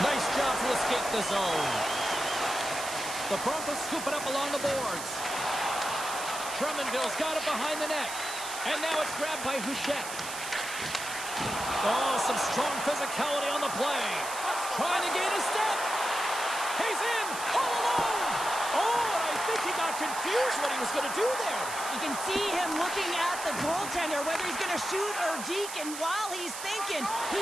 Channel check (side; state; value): right; noise; hiss, 8 dB below the sound